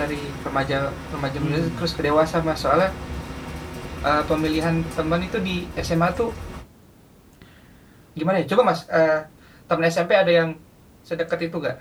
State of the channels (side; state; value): both; identical; correlation 1.00